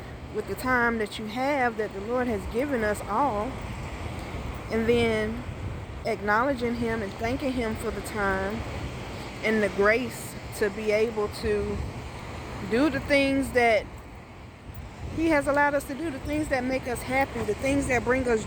with the time that you have, that the Lord has given us all, and then acknowledging him and thanking him for the time and the grace to be able to do the things that he has allowed us to do, the things that make us happy, the things that bring us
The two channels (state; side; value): identical; both; correlation 1.00